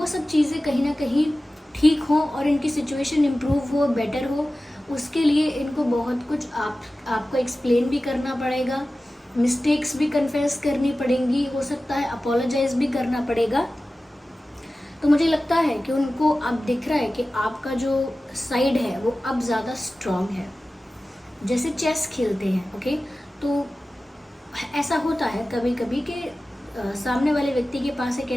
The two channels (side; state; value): both; normal; correlation 0.96